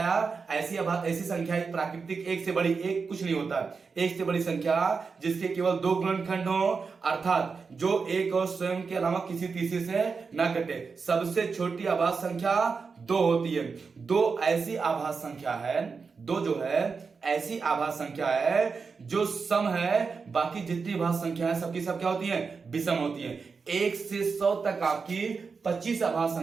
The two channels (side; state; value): left; quieter; 5.1 dB